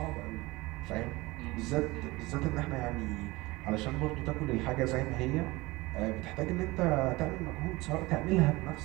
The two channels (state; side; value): quieter; left; 21.6 dB